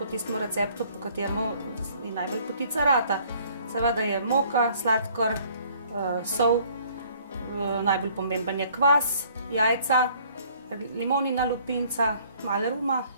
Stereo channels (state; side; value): inverted; both; correlation -0.59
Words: tistem receptu, po kateremu je najbolj potica rata. Seveda je moka, sladkor, sol, najbolj pomemben je kvas, jajca, limonina lupinca, malo ruma